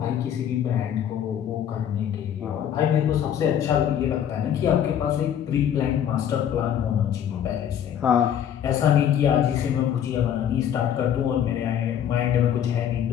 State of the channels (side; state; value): right; quieter; 9.5 dB